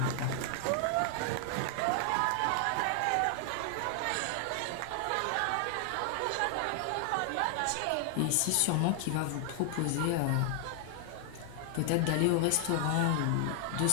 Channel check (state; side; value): different; both; correlation 0.00